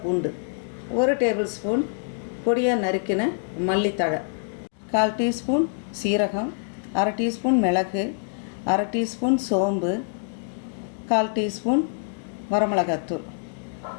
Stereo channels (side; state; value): right; silent; digital silence